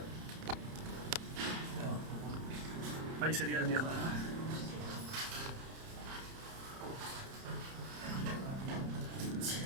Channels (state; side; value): late; left; 30 ms